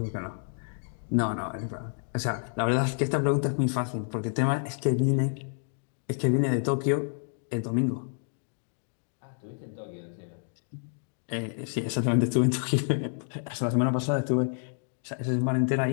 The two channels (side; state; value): right; silent; digital silence